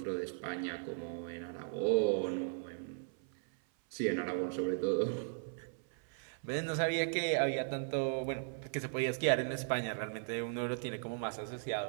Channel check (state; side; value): silent; left; 53 dB below the other